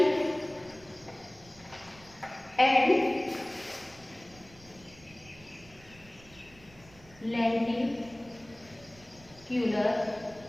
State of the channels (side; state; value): right; noise; rumble, 23 dB below the sound